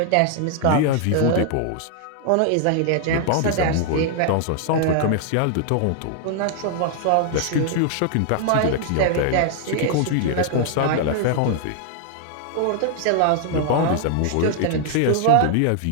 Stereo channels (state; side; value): different; both; correlation 0.00